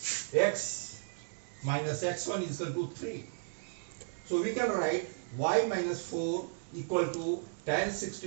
X minus x1 is equal to 3. So we can write y minus 4 equal to tan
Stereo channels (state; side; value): silent; left; digital silence